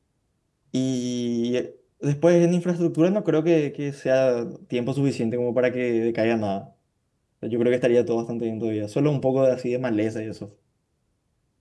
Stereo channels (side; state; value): both; identical; correlation 1.00